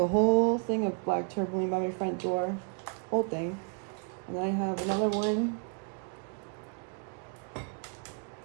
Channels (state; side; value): quieter; left; 39.3 dB